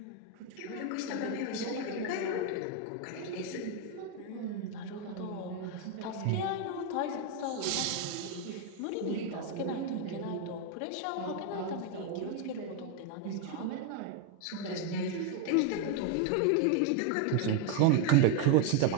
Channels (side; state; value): both; different; correlation 0.01